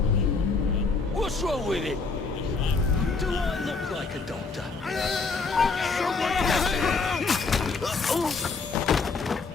What's wrong with him? Do I look like a doctor?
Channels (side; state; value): right; quieter; 4.4 dB